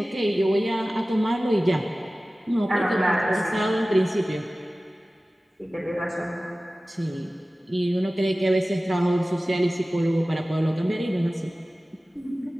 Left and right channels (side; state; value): both; normal; correlation 0.97